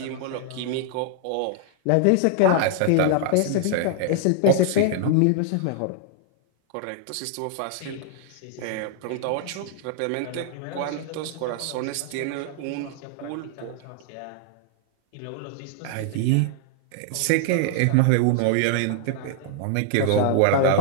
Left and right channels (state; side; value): different; both; correlation 0.00